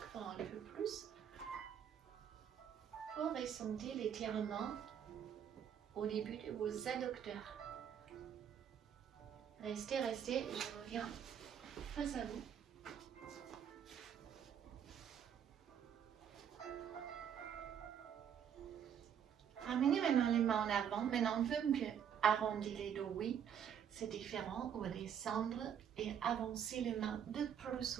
fois un peu plus pour ressentir l'étirement au début de vos adducteurs. Restez, restez, je reviens face à vous. Ramenez maintenant les mains en avant. Maintenant, on veut mieux arrondir les dos, oui. C'est différent. On va descendre et avancer les mains de plus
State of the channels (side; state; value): left; quieter; 8.6 dB